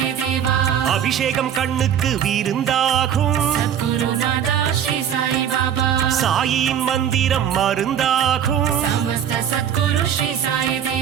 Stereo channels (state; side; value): quieter; left; 9.2 dB